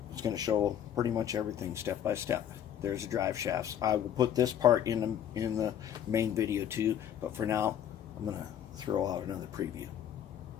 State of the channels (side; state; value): right; quieter; 9.8 dB